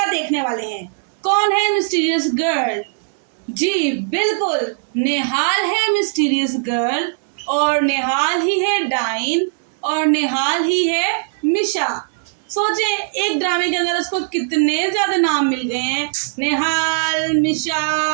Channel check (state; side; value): silent; left; digital silence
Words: देखने वाले हैं? कौन है मिस्टीरियस गर्ल? जी बिल्कुल, नेहाल है मिस्टीरियस गर्ल, और नेहाल ही है डाइन, और नेहाल ही है मिशा। सोचे एक ड्रामे के अंदर उसको कितने ज्यादा नाम मिल गए हैं, नेहाल,